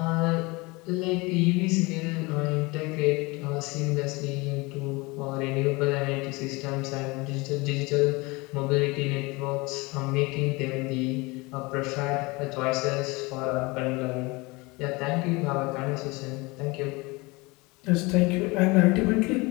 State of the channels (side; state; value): right; quieter; 24.8 dB